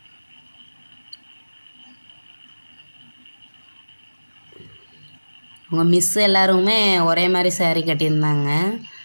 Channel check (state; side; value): inverted; both; correlation -1.00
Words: அவங்க மிஸ் எல்லாருமே ஒரே மாதிரி சேரீ கட்டியிருந்தாங்க.